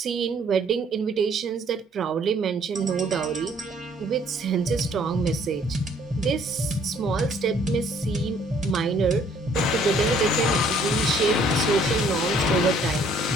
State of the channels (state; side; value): normal; both; correlation 0.61